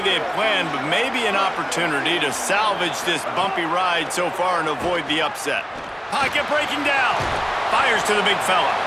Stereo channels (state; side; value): identical; both; correlation 1.00